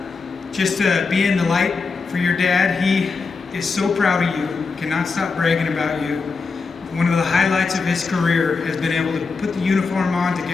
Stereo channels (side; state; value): right; quieter; 4.6 dB